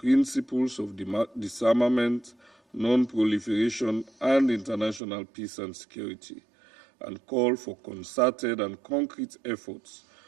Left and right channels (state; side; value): drops out; left; at 5.0 s